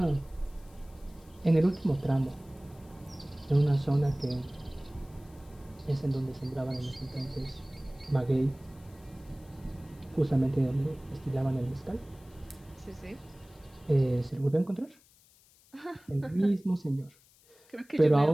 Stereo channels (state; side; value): noise; left; hiss, 28 dB below the sound